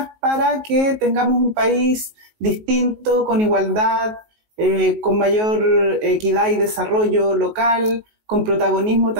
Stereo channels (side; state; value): left; late; 19 ms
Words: para que tengamos un país distinto, con igualdad, con mayor equidad y desarrollo local, con protagonismo